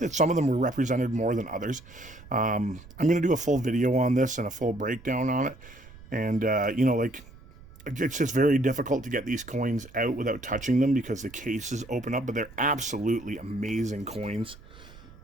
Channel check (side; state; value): right; noise; rumble, 20 dB below the sound